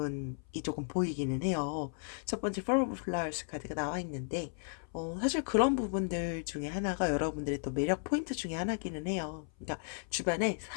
조금 보이기는 해요. 첫 번째, Four of Flowers 카드가 나와 있는데, 사실 그런 부분들 중에 하나가 여러분들의 또 매력 포인트 중에 하나기는 해요. 그러니까 주변에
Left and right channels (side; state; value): right; silent; 55 dB below the other